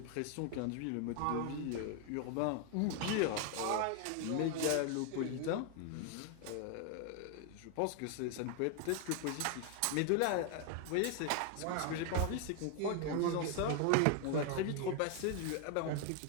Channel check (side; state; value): both; different; correlation 0.01